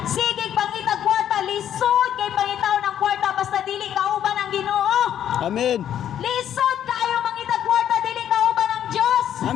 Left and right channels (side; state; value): right; quieter; 10.2 dB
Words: Sige, pangitag kwarta, lisod kay pangitaw ng kwarta, basta dili kauban ang Ginoo. Amen. Lisod kayo mangitag kwarta, dili kauban ang Dios.